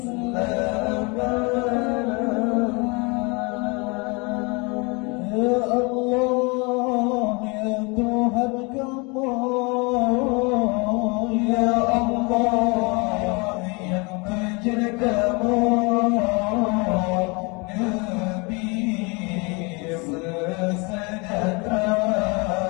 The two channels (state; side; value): quieter; right; 29.5 dB